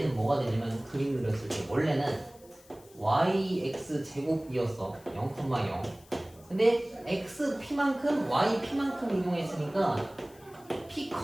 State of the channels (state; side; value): noise; left; hiss, 26 dB below the sound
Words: 뭐가 되냐면 그림 그렸을 때 원래는 yx 제곱이었어. 0,0. 근데 x p만큼 y p만큼 이동했으니까 p,